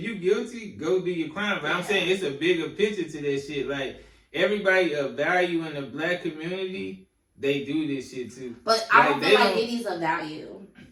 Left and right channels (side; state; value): both; identical; correlation 1.00